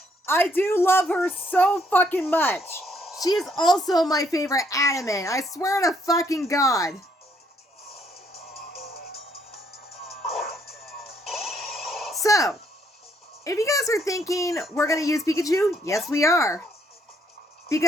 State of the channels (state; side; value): normal; both; correlation 0.69